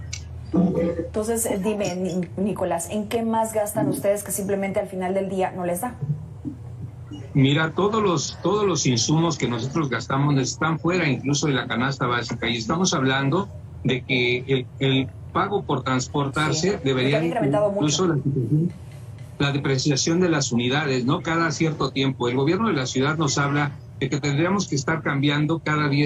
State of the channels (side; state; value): both; identical; correlation 1.00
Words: Entonces, dime, Nicolás, ¿en qué más gastan ustedes que simplemente al final del día no les da? Mira, todos los insumos que nosotros gastamos están fuera incluso de la canasta básica, y estamos hablando de que el pago por transportarse debería incluso la depreciación de las unidades, ¿no? Cada cierto tiempo. El gobierno de la ciudad nos habla de que tendríamos que estar cambiando cada